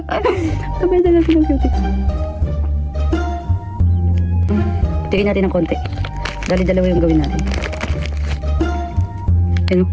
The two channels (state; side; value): identical; both; correlation 1.00